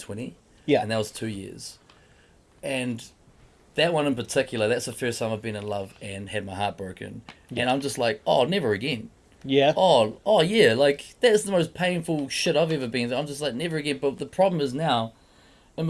Yeah. And that was 2 years. And that one in particular, that's the first time I've been in love and had my heart broken. Yeah. And I'm just like, oh, never again. Yeah. Oh yeah, like that's the most painful shit I've ever been through. I'm just like, never again. But the problem is now, in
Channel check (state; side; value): identical; both; correlation 1.00